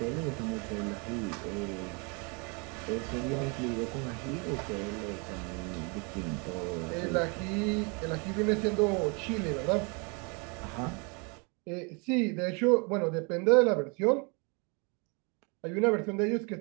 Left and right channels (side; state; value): left; quieter; 32.6 dB